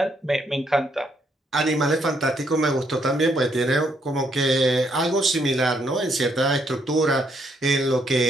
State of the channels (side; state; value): both; normal; correlation 0.73